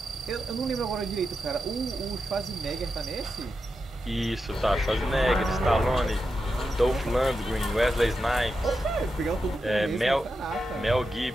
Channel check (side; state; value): both; normal; correlation 0.88